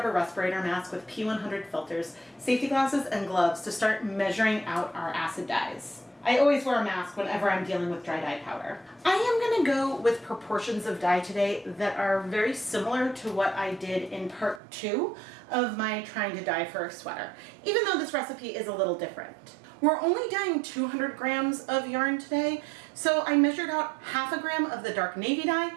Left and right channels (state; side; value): drops out; left; at 14.6 s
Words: respirator mask with P100 filters, safety glasses, and gloves to start measuring out our acid dyes. I always wear a mask whenever I'm dealing with dry dye powder. I am gonna go with proportions of dye today that are very similar to what I did in part 2 of my trying to dye for a sweater, even though this recipe is a little different. We're only dyeing 200 grams of yarn today, so I measured out ½ a gram of the dark navy dye